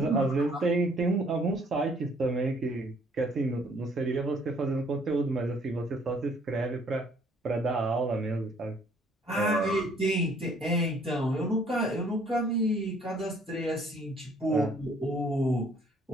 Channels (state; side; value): normal; both; correlation 0.61